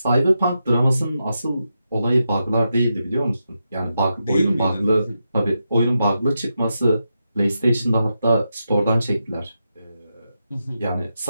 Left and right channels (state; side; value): inverted; both; correlation -0.87